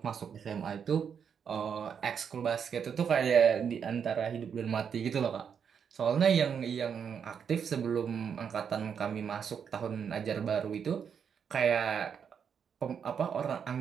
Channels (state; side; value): quieter; left; 7.3 dB